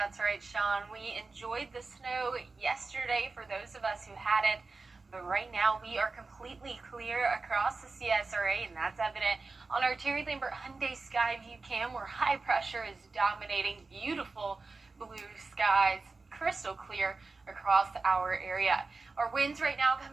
right, Sean. We enjoyed the snow yesterday for those of us who had it. But right now, we are completely clear across the CSRA, and that's evident on our Terry Lambert Hyundai Skyview cam, where high pressure is dominating. Beautiful blue skies, crystal clear across our area. Our winds right now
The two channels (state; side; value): quieter; left; 3.8 dB